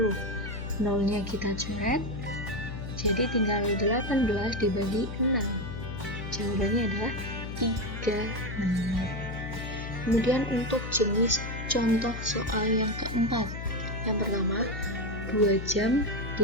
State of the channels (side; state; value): left; noise; hum, 7 dB below the sound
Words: Nolnya kita coret. Jadi tinggal 18 dibagi 6. Jawabannya adalah 3 menit. Kemudian untuk jenis contoh soal yang keempat. Yang pertama, 2 jam